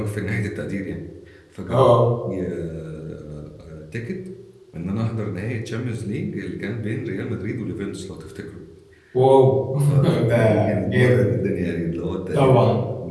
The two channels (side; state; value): both; identical; correlation 1.00